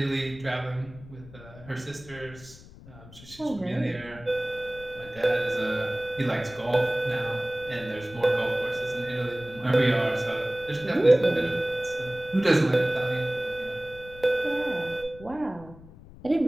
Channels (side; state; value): left; noise; rumble, 19 dB below the sound